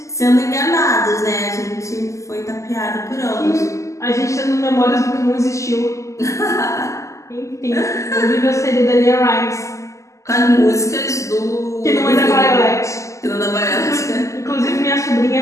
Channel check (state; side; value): late; right; 0.15 ms